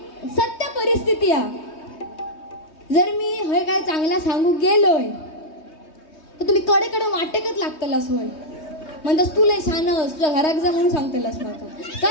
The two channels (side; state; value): right; late; 3.2 ms